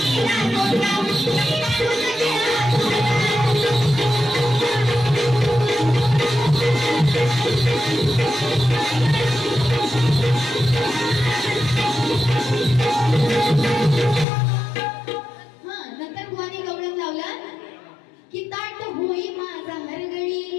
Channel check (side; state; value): right; drops out; at 14.2 s